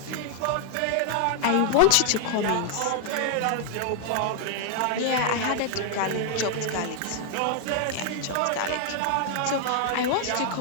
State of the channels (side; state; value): both; different; correlation 0.00